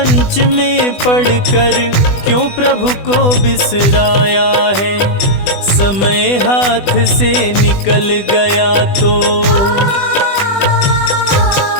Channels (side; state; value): right; late; 20 ms